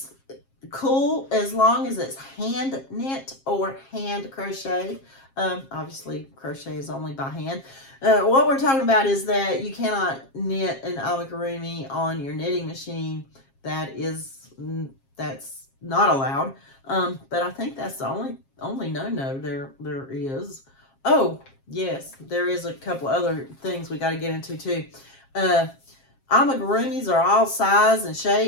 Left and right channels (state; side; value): late; right; 7.4 ms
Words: cool as long as it's hand knit or hand crochet. Obviously, crochet is only by hand. What we're talking about is that you cannot knit an amigurumi on your knitting machine. That's not allowed. But I think that's the only no there is. Oh, yes, there is a couple other things we got to get into too. Amigurumis are all size and